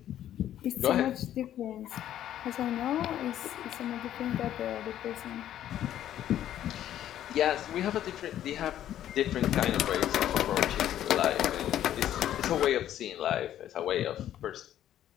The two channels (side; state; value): right; quieter; 11.6 dB